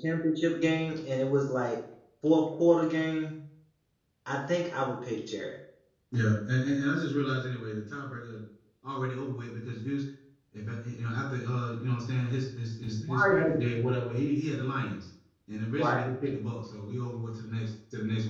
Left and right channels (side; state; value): both; identical; correlation 1.00